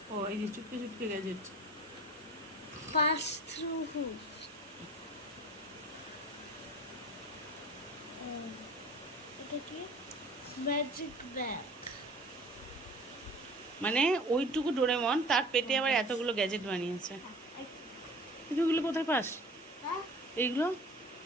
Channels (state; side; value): normal; both; correlation 0.43